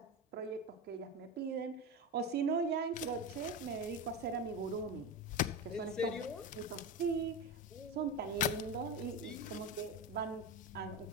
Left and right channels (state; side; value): normal; both; correlation 0.20